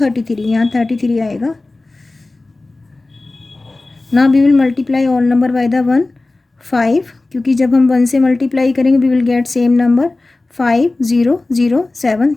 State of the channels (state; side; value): quieter; right; 3.1 dB